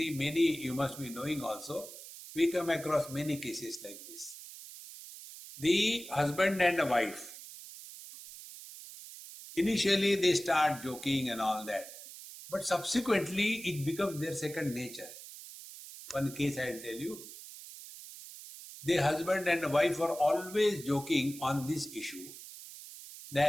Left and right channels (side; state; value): right; noise; hiss, 14 dB below the sound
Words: you must be knowing also, we come across many cases like this. The husband and the wife, initially they start joking and all that, but subsequently it becomes their second nature. One case I will tell you. The husband and the wife are always joking on this issue,